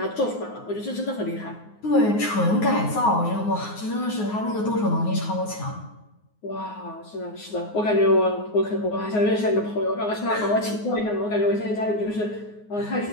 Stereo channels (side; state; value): right; late; 9.6 ms